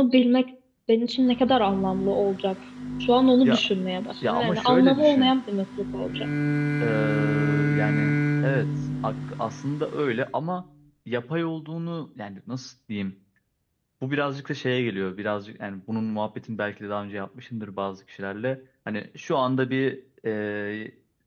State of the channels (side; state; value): both; identical; correlation 1.00